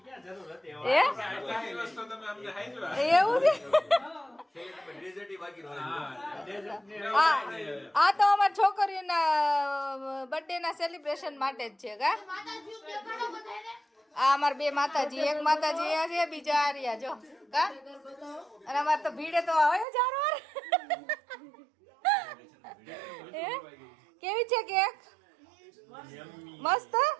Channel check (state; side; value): drops out; left; at 19.9 s